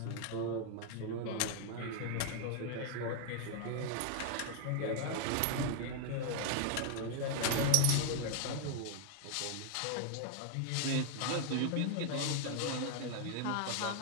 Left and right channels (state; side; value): different; both; correlation 0.00